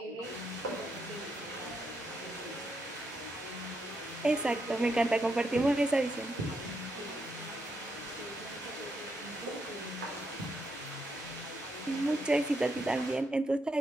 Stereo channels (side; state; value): both; normal; correlation 0.80